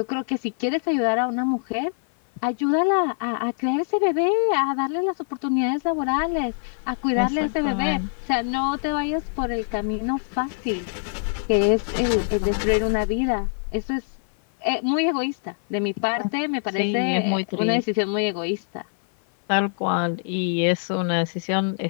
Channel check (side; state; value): right; silent; 56 dB below the other